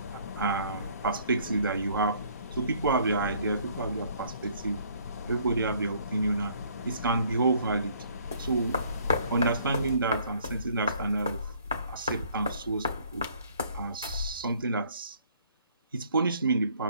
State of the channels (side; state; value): both; inverted; correlation -0.61